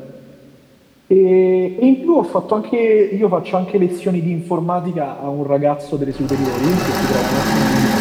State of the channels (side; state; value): both; identical; correlation 1.00